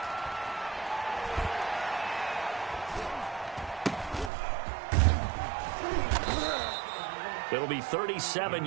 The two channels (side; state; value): left; drops out; at 4.3 s